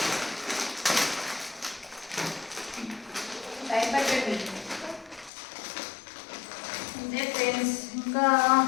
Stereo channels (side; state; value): right; drops out; at 5.3 s